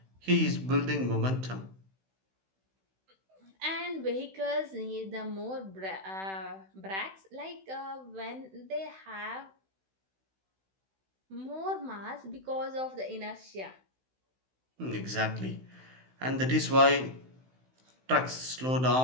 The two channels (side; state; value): left; late; 16 ms